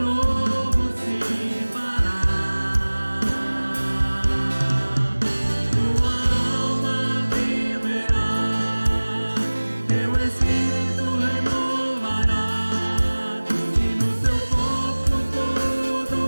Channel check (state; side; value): inverted; both; correlation -1.00